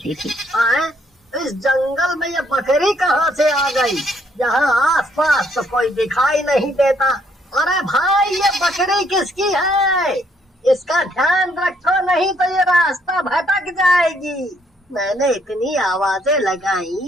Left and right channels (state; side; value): normal; both; correlation 0.69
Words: थी। इस जंगल में ये बकरी कहाँ से आ गई? यहाँ आसपास तो कोई दिखाई नहीं देता। अरे भाई, ये बकरी किसकी है? इसका ध्यान रखो, नहीं तो ये रास्ता भटक जाएगी। मैंने इतनी आवाजें